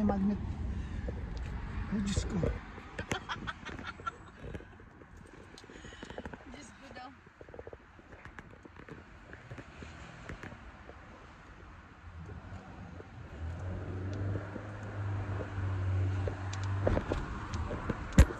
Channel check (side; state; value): both; identical; correlation 1.00